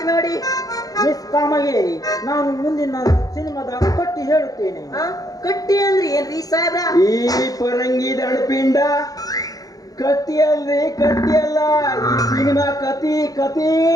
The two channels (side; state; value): right; late; 0.18 ms